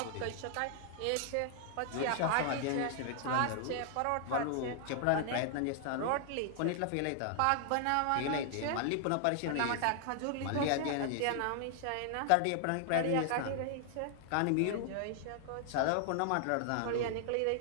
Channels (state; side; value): different; both; correlation 0.00